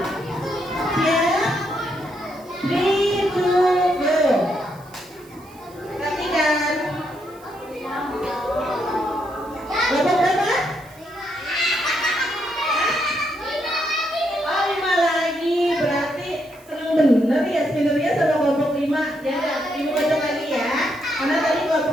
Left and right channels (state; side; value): noise; right; hiss, 26 dB below the sound